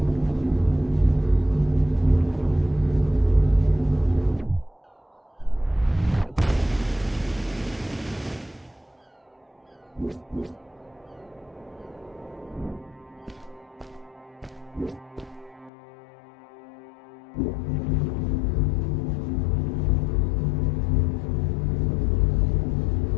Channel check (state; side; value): drops out; right; at 15.7 s